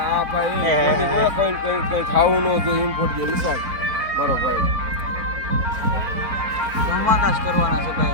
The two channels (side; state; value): left; late; 4.5 ms